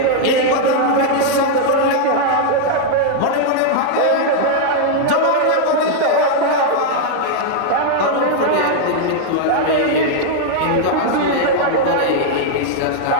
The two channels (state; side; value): different; both; correlation -0.01